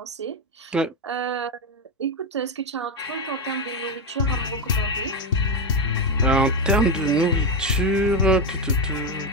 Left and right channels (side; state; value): both; normal; correlation 0.09